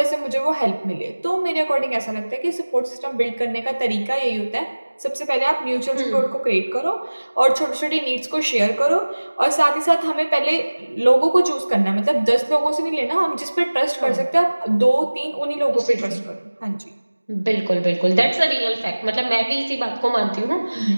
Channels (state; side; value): inverted; both; correlation -1.00